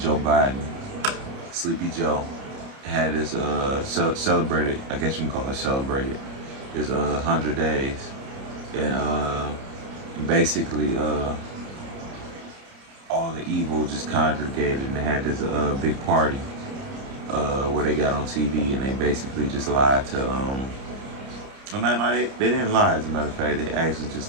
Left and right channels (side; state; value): left; late; 30 ms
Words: Joe Biden, Sleepy Joe, had his celebrated, I guess you can call it celebrated, his 100 days. And basically all the evil just congregated and they had this big party where they got on TV and they basically just lied to, they didn't lie, as a matter of fact, they actually just